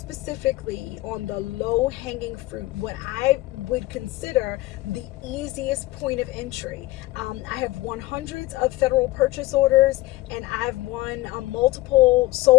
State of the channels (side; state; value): right; quieter; 18.3 dB